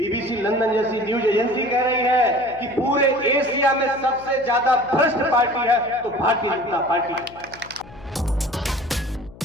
लंदन जैसी न्यूज एजेंसी कह रही है कि पूरे एशिया में सबसे ज्यादा भ्रष्ट पार्टी है तो भारतीय जनता पार्टी है।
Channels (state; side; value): noise; left; hum, 21 dB below the sound